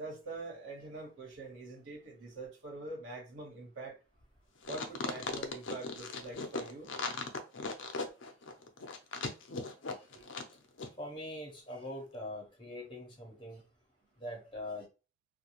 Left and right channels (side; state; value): both; normal; correlation 0.06